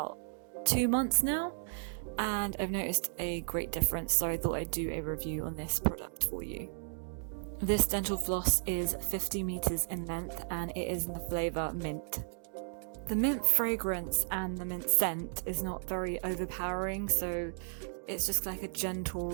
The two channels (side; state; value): left; silent; digital silence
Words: 2 months now, and I've noticed a great difference, so I thought I'd do a review on this product for you. This dental floss is 50 meters in length and it is in the flavour mint. The mint fragrance and the mint scent is not very overpowering, so it's just like a gentle,